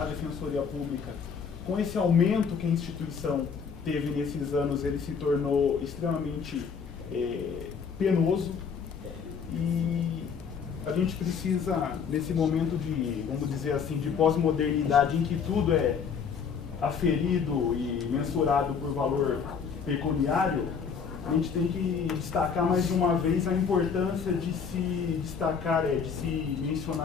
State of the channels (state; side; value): quieter; right; 6.3 dB